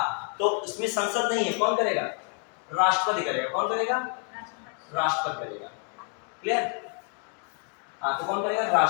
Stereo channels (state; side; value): quieter; right; 39.8 dB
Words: तो इसमें संसद नहीं है, कौन करेगा, राष्ट्रपति करेगा। कौन करेगा, राष्ट्रपति करेगा। क्लियर। हाँ तो कौन करेगा,